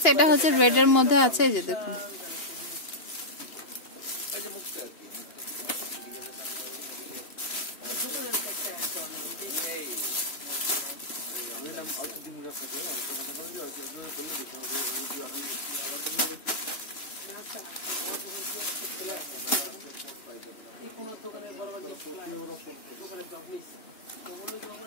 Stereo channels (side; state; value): right; late; 2.8 ms